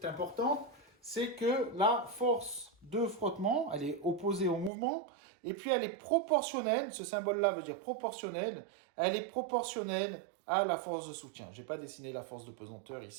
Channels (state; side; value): drops out; left; at 4.7 s